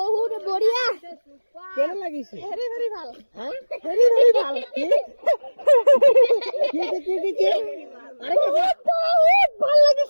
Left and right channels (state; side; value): inverted; both; correlation -1.00